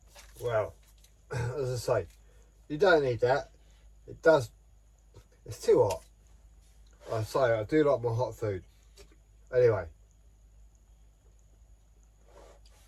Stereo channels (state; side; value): identical; both; correlation 1.00